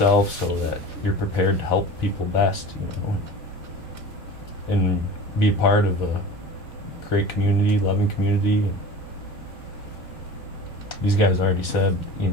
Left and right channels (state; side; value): normal; both; correlation 0.37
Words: so that you're prepared to help people best, and be a part of a great community, loving community. And these guys already said,